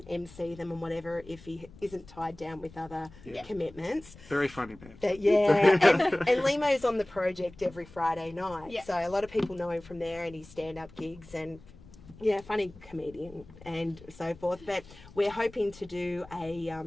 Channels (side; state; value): left; noise; rumble, 21 dB below the sound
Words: MC them and whatever, if he isn't tied down with other commitments. Very funny man. But and Limo's on the project every Friday night. Yeah. So a lot of people know him from there and his stand-up gigs, and funny comedian and so forth. But we're hoping to do